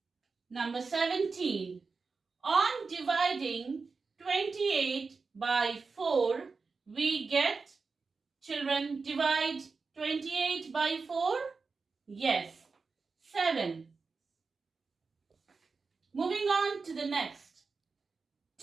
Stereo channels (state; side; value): quieter; left; 4.5 dB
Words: Number 17. On dividing 28 by 4, we get, children, divide 28 by 4? Yes, 7. Moving on to the next.